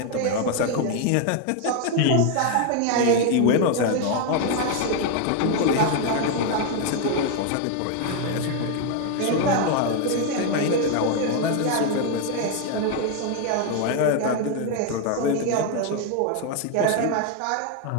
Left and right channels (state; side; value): different; both; correlation 0.01